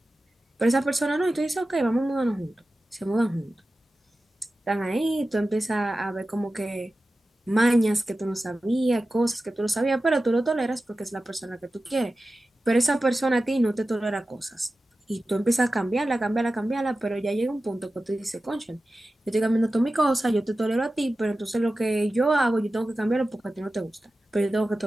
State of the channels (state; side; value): normal; both; correlation 0.94